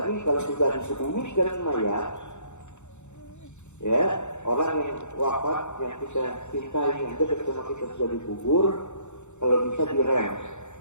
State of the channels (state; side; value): late; right; 0.83 ms